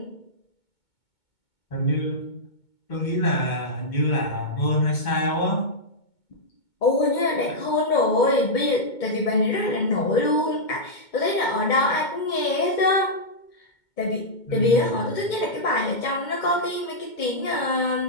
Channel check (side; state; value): right; late; 2.2 ms